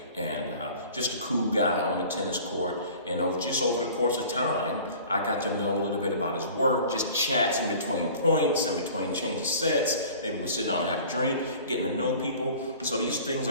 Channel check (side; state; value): both; inverted; correlation -0.44